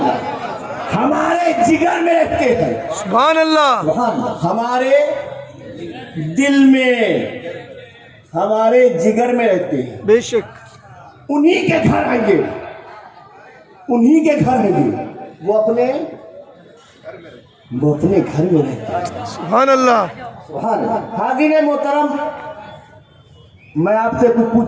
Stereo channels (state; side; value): identical; both; correlation 1.00